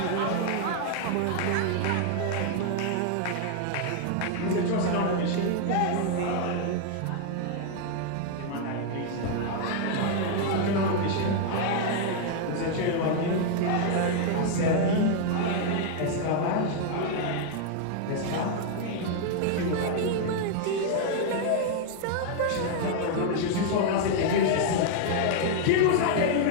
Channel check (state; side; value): different; both; correlation 0.00